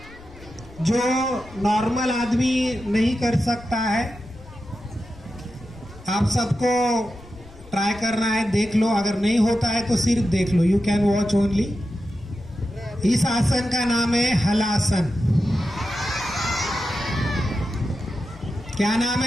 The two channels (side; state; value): left; noise; rumble, 21 dB below the sound